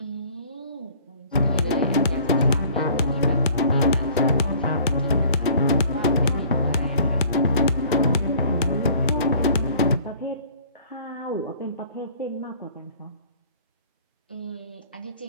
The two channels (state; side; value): inverted; both; correlation -0.51